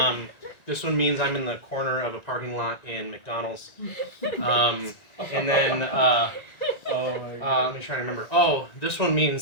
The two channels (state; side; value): late; right; 1.8 ms